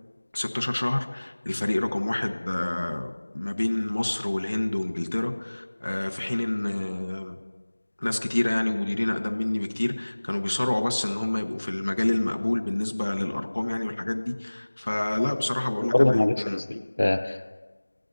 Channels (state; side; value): inverted; both; correlation -1.00